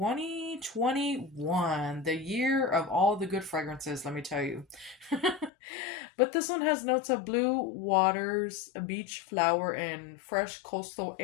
the year of all the good fragrances, let me tell you. But this one has notes of blue waters, a beach flower, and fresh coastal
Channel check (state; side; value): drops out; right; at 5.5 s